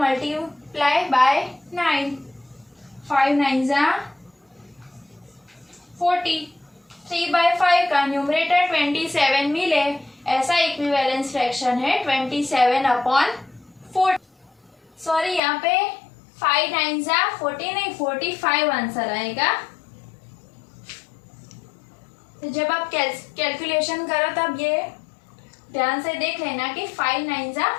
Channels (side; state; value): right; drops out; at 15.4 s